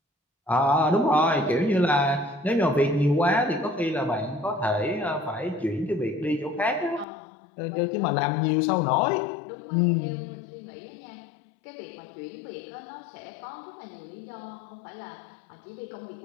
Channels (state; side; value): drops out; right; at 7.1 s